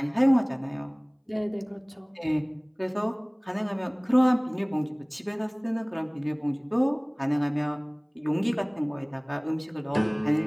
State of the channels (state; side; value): identical; both; correlation 1.00